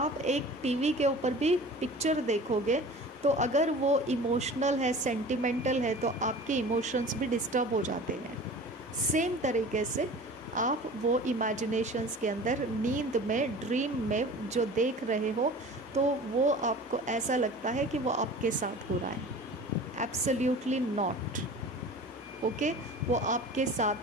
एक टीवी के ऊपर भी पिक्चर देखोगे तो अगर वो इमोशनल है, सेंटिमेंटल है, तो आपके इमोशंस भी डिस्टर्ब हो जाते हैं। सेम तरीके से आप वो इमेजिनेशंस के अंदर, नींद में, ड्रीम में जो देख रहे हो, तो वो आपको ऐसा लगता है कि वो आपके साथ हो रहा है। Absolutely not. ओके, वो आपके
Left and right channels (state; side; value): normal; both; correlation 0.40